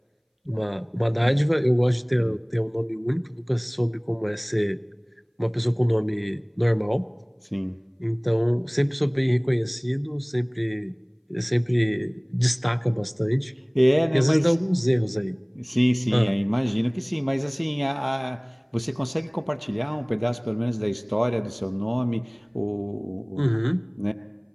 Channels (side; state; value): both; identical; correlation 1.00